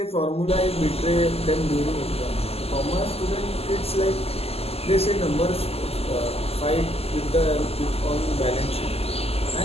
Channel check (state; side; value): late; right; 0.29 ms